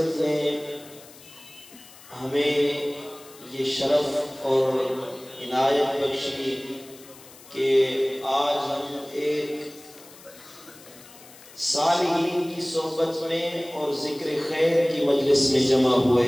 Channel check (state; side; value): noise; left; hiss, 21 dB below the sound